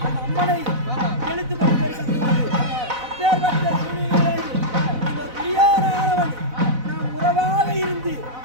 அம்மனை எழுத்து கொண்டு அப்பேற்பட்ட சூழ்நிலையில் இந்த பிரியானவன் நாம் உறவாக இருந்து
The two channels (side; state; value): left; late; 4.0 ms